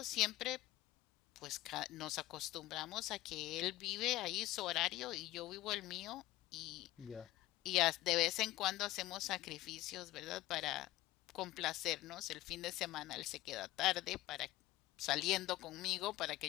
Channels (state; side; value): quieter; right; 16.6 dB